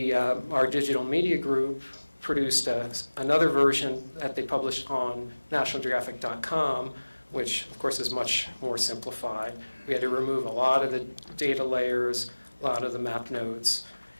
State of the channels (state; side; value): inverted; both; correlation -1.00